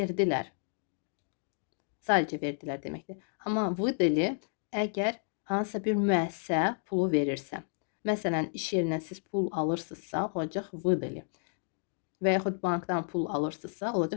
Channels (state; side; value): silent; right; 57 dB below the other